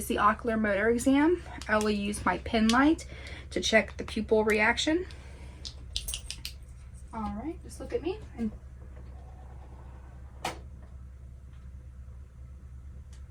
the ocular motor exam. I will use my pen light to check the pupil reaction. All right, just look at me.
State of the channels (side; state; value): both; identical; correlation 1.00